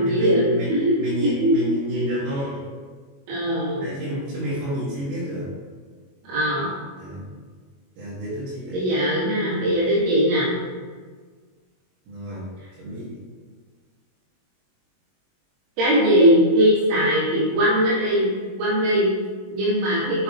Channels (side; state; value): left; late; 22 ms